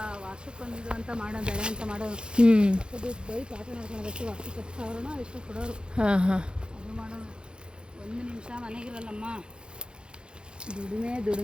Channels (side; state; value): left; late; 0.051 ms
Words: ವರ್ಷಕ್ಕೊಂದು ಅಂತ ಮಾಡೋಣ, ಬೆಳೆ ಅಂತ ಮಾಡೋದು. ಅದು ಬೈ ಪಾಠ ಮಾಡ್ಕೊಳೋದಷ್ಟು ವರ್ಷಕ್ಕೆ 10,000 ಎಷ್ಟು ಕೊಡೋರು. ಅದು ಮಾಡೋಣ. 1 ನಿಮಿಷ ಮನೆಗಿರಲ್ಲಮ್ಮ, ದುಡಿಮೆ